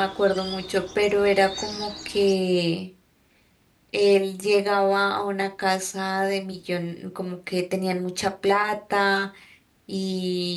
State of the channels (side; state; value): both; identical; correlation 1.00